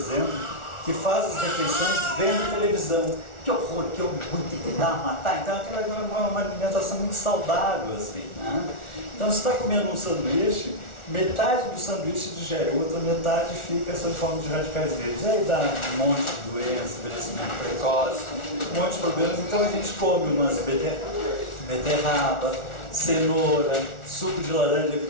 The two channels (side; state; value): right; late; 1.4 ms